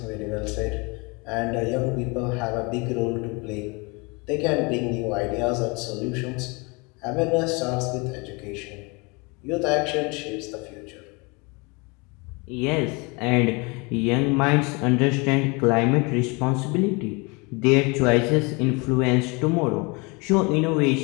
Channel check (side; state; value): right; quieter; 28.5 dB